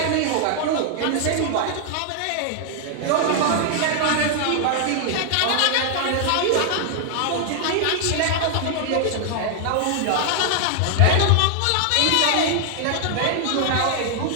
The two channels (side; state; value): both; different; correlation 0.00